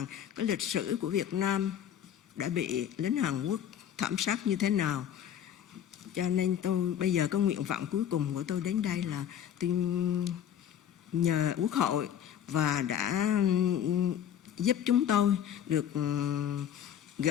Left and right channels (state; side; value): quieter; right; 9.8 dB